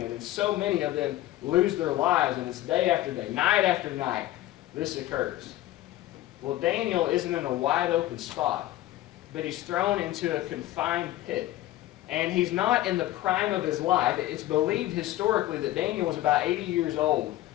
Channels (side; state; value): right; quieter; 15.1 dB